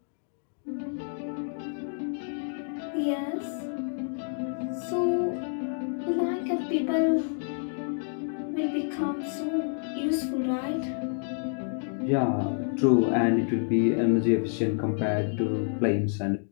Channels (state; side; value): silent; right; digital silence